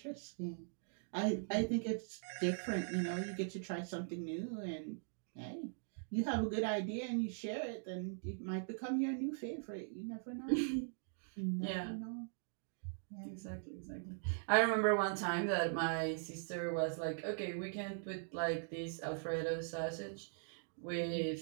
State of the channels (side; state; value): left; silent; digital silence